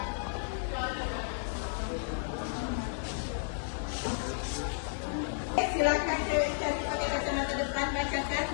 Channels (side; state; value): right; silent; digital silence